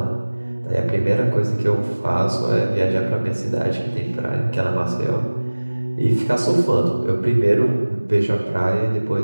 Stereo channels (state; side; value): inverted; both; correlation -1.00